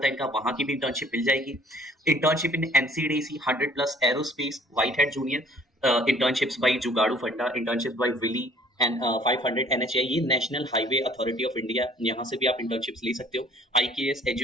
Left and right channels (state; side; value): normal; both; correlation 0.55